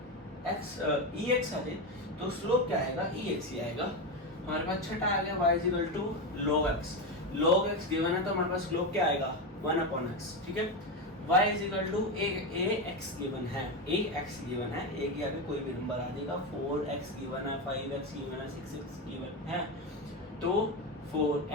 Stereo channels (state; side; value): normal; both; correlation 0.14